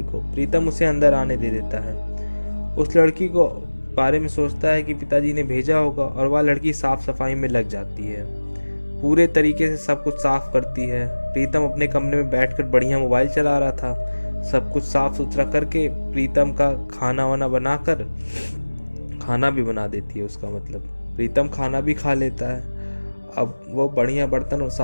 को। प्रीतम उसे अंदर आने दे देता है। उस लड़की को बारे में सोचता है कि पिताजी ने भेजा होगा और वह लड़की साफ सफाई में लग जाती है। पूरे तरीके से सब कुछ साफ करती है। प्रीतम अपने कमरे में बैठकर बढ़िया मोबाइल चला रहा था। सब कुछ साफ सुथरा करके प्रीतम का खाना वाना बनाकर खाना भी बना देती है। उसका मतलब प्रीतम खाना भी खा लेता है। अब वो बढ़िया बर्तन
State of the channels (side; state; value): both; inverted; correlation -1.00